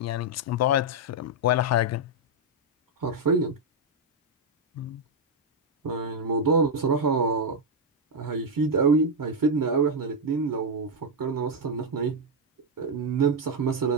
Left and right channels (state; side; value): normal; both; correlation 0.00